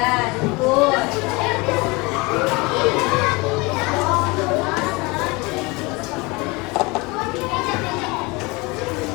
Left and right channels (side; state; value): right; quieter; 25.5 dB